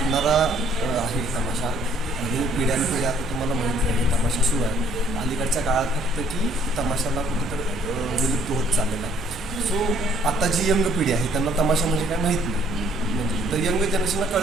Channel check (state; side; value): normal; both; correlation 0.61